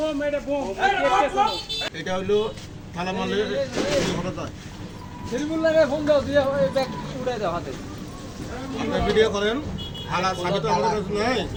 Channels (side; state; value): both; identical; correlation 1.00